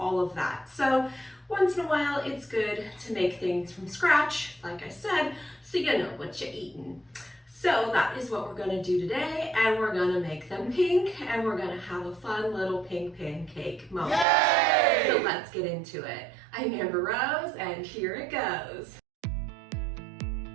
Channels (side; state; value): left; drops out; at 14.2 s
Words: of that. So once in a while it's good to make things from scratch, like I said, so you know what you're eating. So that is what we're gonna do today, and we're gonna make them pink, and we're gonna have a fun little pink pancake moment. Yay! So let's get into it. I'm Amber Rose, and here it goes.